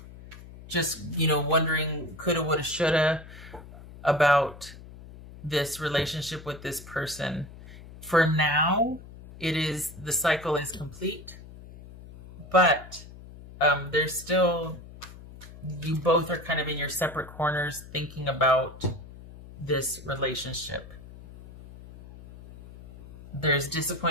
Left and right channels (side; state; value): left; noise; hum, 17 dB below the sound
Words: just, you know, wondering coulda, woulda, shoulda about this relationship with this person. For now, the cycle is complete, but there's still, you both are kind of in your separate corners thinking about this relationship. There's